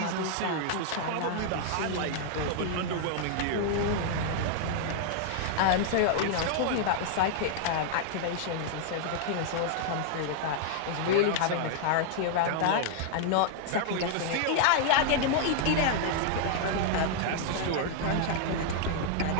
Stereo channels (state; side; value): different; both; correlation -0.01